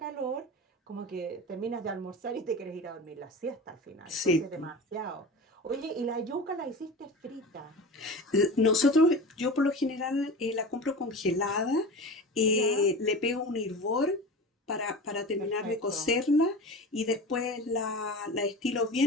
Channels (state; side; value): normal; both; correlation 0.32